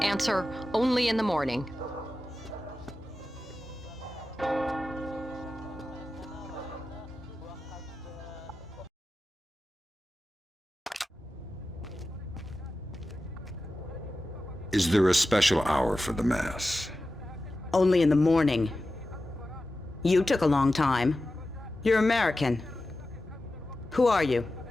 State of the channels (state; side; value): normal; both; correlation 0.93